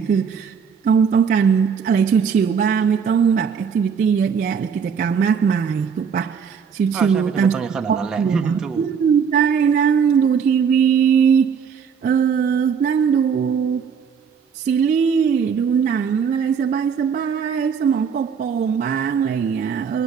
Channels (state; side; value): quieter; left; 6.7 dB